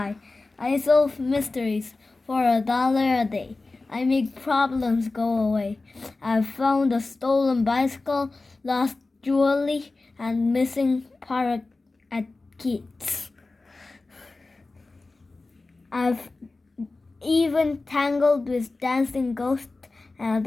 I solve mysteries for $1 a day. I make problems go away. I've found a stolen bicycle, lost jewelry, and missing parrot at kids. I've even tangled with dancing ghosts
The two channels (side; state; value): right; quieter; 3.4 dB